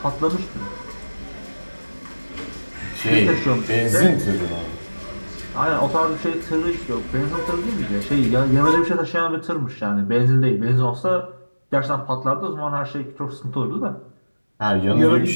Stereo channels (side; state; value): both; inverted; correlation -1.00